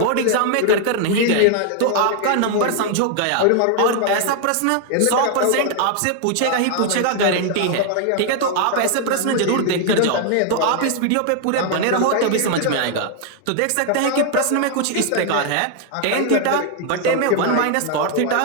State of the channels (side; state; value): both; different; correlation 0.00